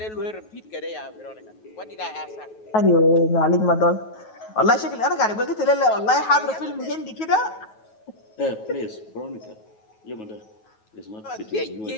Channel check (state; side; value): late; right; 9.3 ms